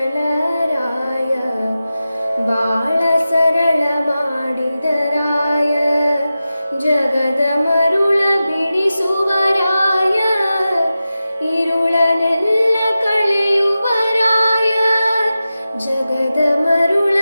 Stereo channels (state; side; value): inverted; both; correlation -0.93